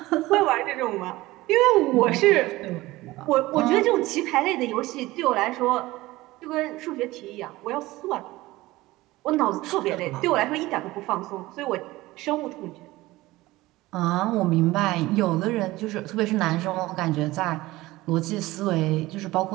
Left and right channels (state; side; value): quieter; left; 18.8 dB